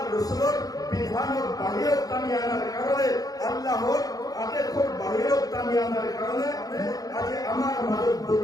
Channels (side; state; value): right; late; 0.18 ms